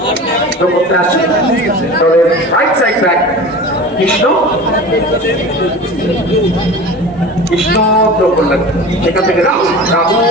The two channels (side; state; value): both; normal; correlation 0.35